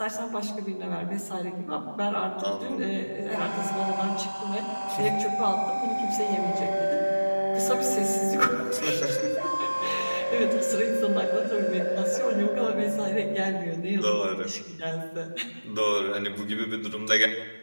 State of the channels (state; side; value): inverted; both; correlation -1.00